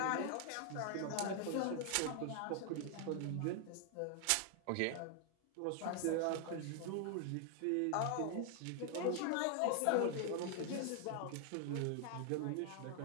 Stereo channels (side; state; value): both; different; correlation 0.00